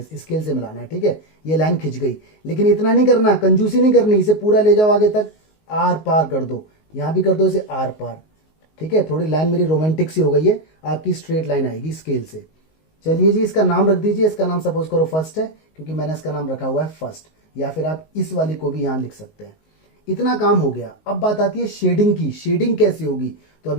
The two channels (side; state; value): right; late; 19 ms